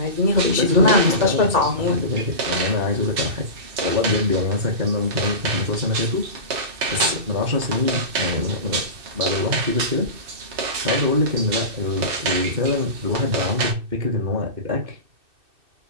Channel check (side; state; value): left; late; 2.6 ms